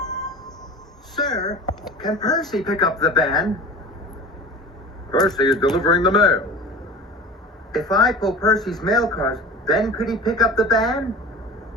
Sir, can Percy pick up the band? Percy is delivering the mail. If I pull Percy's mail cars, then could he pick up the band?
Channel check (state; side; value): normal; both; correlation 0.37